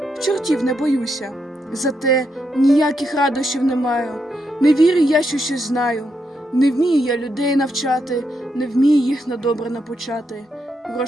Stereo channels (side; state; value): both; normal; correlation 0.81